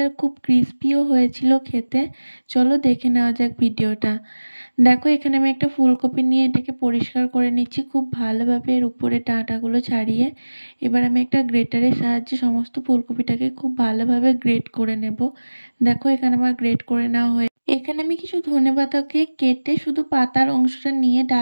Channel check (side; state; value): both; inverted; correlation -1.00